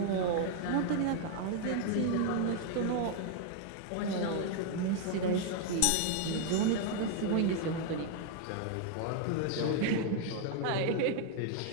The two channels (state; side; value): different; both; correlation 0.00